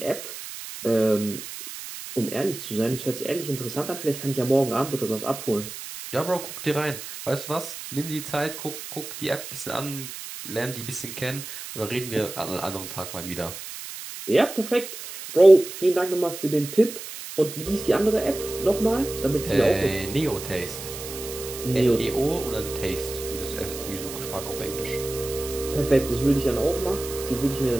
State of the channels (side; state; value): right; noise; hiss, 10 dB below the sound